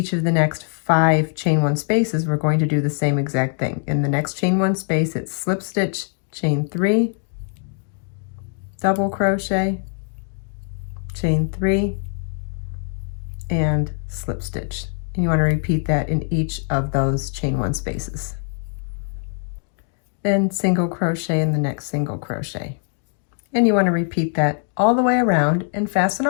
of the next 5 chain 1 spaces, we're going to do the same exact thing. In the next chain 1 space, it's slip stitch, chain 3, double crochet, chain 3, and slip stitch. And you want to repeat that in each of those chain 1 spaces. Then single crochet in the next single crochet. And you want to repeat that all the way around and fasten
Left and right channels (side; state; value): right; silent; 57 dB below the other